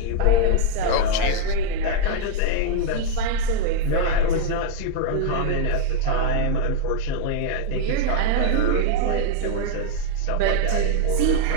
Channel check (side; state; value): both; different; correlation 0.00